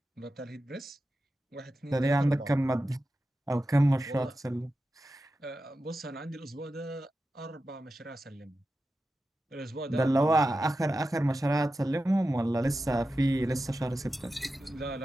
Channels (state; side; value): normal; both; correlation 0.92